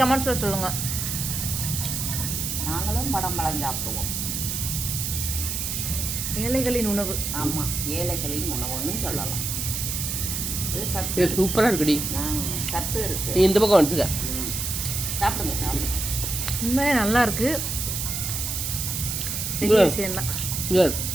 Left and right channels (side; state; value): right; noise; hiss, 2 dB below the sound